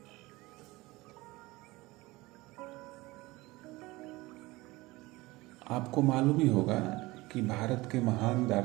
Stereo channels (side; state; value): left; quieter; 20.9 dB